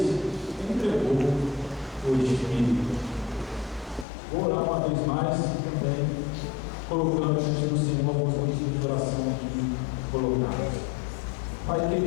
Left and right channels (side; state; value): right; drops out; at 4.0 s